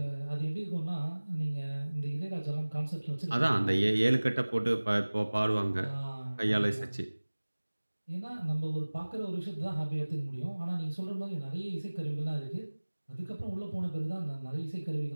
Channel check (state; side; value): inverted; both; correlation -1.00